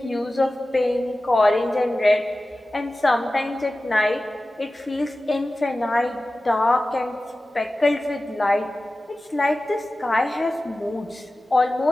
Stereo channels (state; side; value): normal; both; correlation 0.96